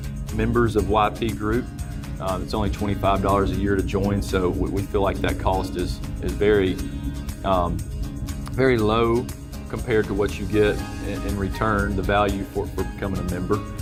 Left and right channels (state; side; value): identical; both; correlation 1.00